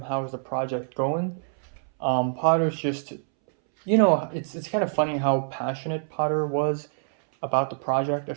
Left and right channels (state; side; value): silent; left; 61 dB below the other